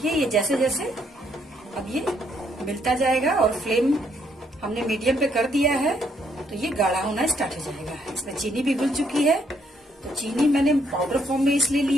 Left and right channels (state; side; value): normal; both; correlation 0.72